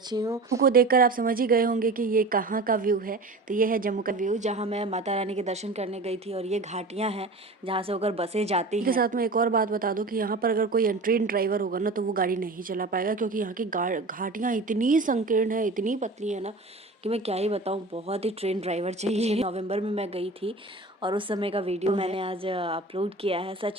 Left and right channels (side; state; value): left; quieter; 3.2 dB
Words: हूँ। को देखकर आप समझ ही गए होंगे कि ये कहाँ का व्यू है। तो ये है जम्मू का व्यू, जहाँ मैं माता रानी के दर्शन करने गई थी। और ये घाटियाँ हैं जहाँ से होकर बसें जाती हैं। के साथ में एक और बात बता दूँ कि यहाँ पर अगर कोई ट्रेन ड्राइवर होगा ना तो वो गाड़ी नहीं चला पाएगा, क्योंकि यहाँ की घाटियाँ इतनी संकीर्ण है, इतनी पतली है ना कि मैं क्या ही बताऊँ। बहुत ही ट्रेन ड्राइवर चाहिए। नवंबर में मैं गई थी और उस समय का वीडियो मैंने आज अपलोड किया है।